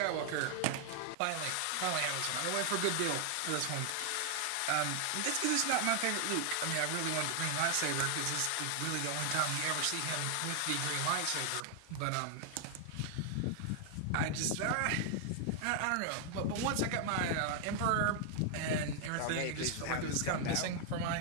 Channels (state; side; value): different; both; correlation 0.00